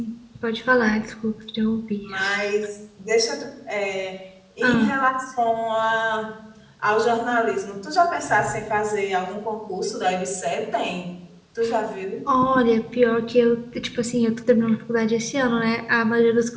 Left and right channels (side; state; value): both; identical; correlation 1.00